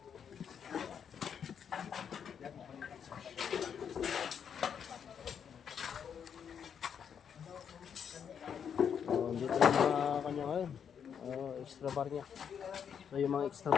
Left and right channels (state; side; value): quieter; right; 7.7 dB